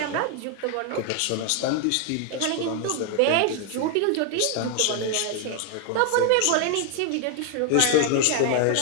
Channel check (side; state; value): both; different; correlation 0.00